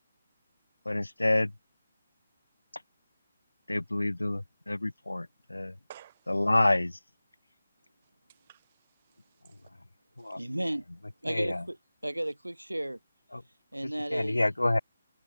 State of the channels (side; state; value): both; inverted; correlation -1.00